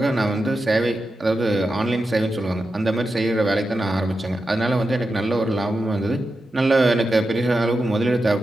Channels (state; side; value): normal; both; correlation 0.90